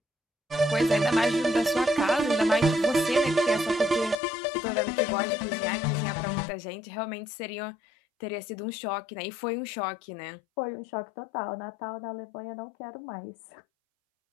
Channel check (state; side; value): drops out; right; at 4.2 s